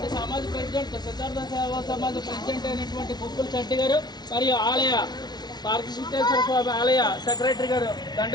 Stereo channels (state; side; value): late; right; 0.20 ms